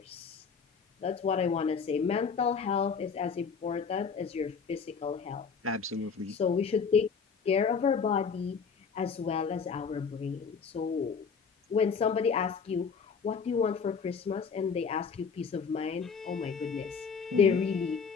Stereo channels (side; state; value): right; quieter; 5.8 dB